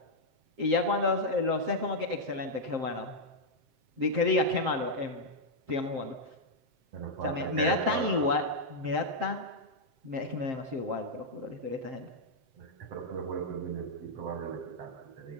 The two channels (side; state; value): left; late; 7.6 ms